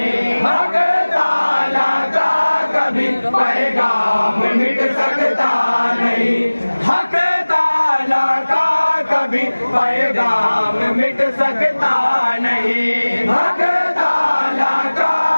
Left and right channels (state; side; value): inverted; both; correlation -1.00